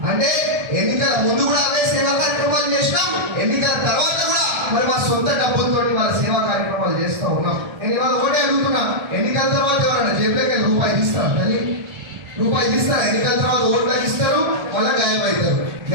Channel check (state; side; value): late; left; 1.3 ms